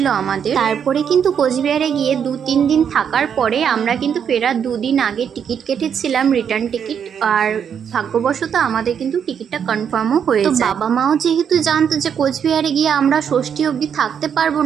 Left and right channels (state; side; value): quieter; left; 7.8 dB